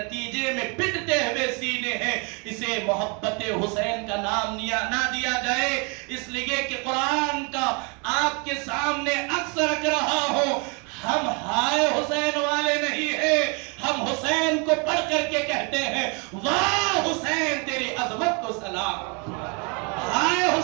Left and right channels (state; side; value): quieter; left; 33.2 dB